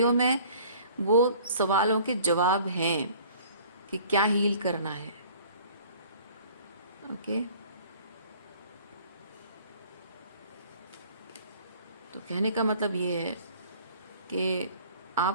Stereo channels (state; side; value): inverted; both; correlation -0.51